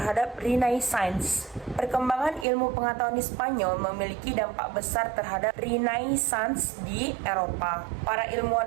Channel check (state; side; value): drops out; left; at 2.5 s